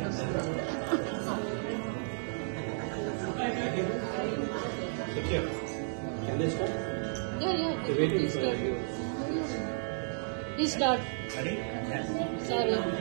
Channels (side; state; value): left; silent; digital silence